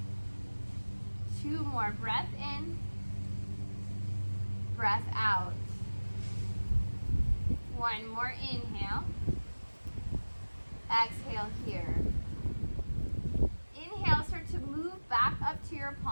2 more. Breath in. Breath out. 1 more. Inhale. Exhale here. Inhale, start to move back up to your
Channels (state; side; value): inverted; both; correlation -1.00